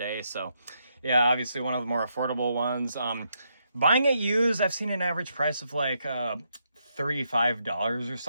So, yeah, obviously one of the more affordable ones. Buying it used, I've seen an average price of like $35 or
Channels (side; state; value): both; inverted; correlation -0.79